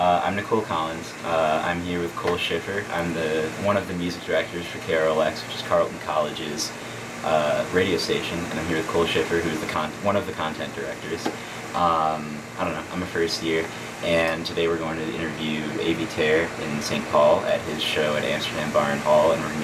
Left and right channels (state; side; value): identical; both; correlation 1.00